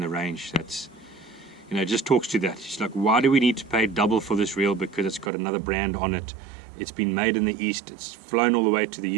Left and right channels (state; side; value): drops out; left; at 5.3 s